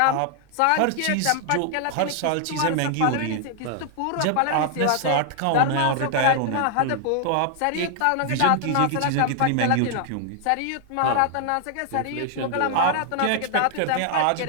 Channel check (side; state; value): both; different; correlation 0.00